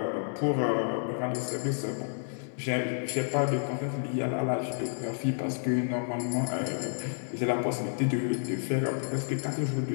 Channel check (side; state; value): right; silent; digital silence